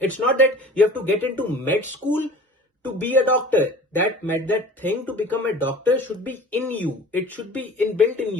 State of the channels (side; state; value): both; normal; correlation 0.42